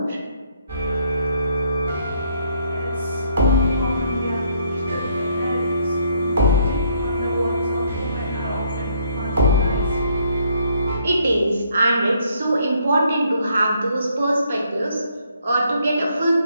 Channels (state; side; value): inverted; both; correlation -0.68